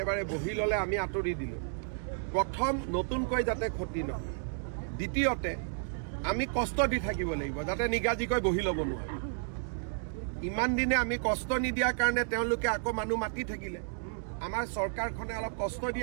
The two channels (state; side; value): silent; left; digital silence